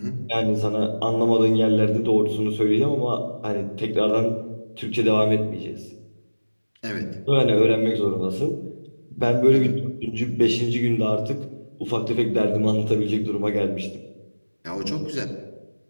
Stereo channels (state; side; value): inverted; both; correlation -1.00